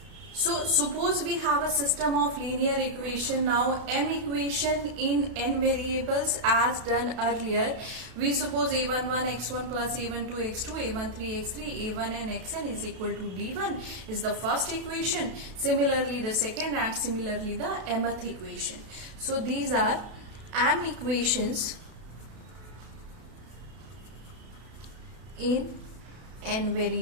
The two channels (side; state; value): left; late; 32 ms